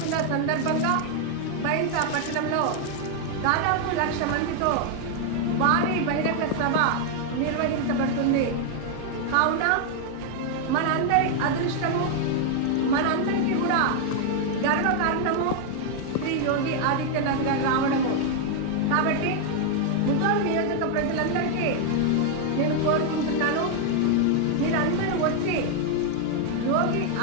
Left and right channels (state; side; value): different; both; correlation 0.00